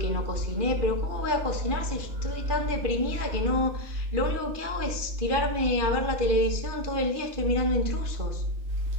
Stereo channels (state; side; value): late; left; 2.5 ms